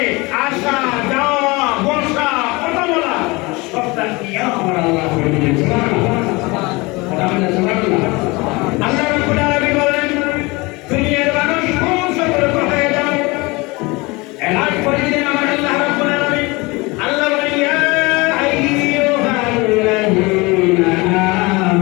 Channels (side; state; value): right; quieter; 24.4 dB